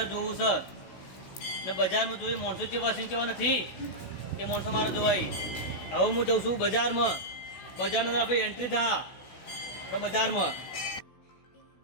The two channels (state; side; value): late; right; 16 ms